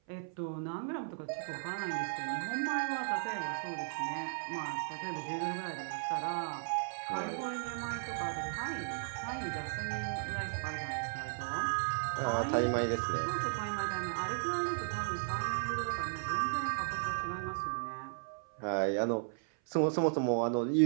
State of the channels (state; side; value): silent; left; 54 dB below the other